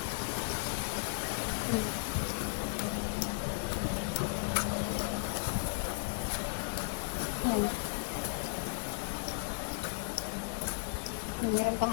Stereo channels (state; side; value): quieter; right; 38.3 dB